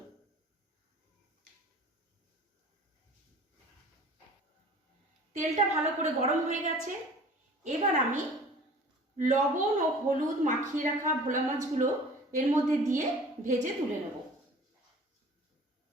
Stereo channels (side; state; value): both; normal; correlation 0.46